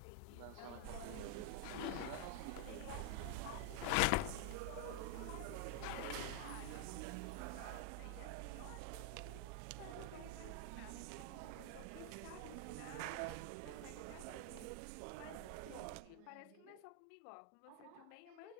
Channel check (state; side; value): different; both; correlation 0.00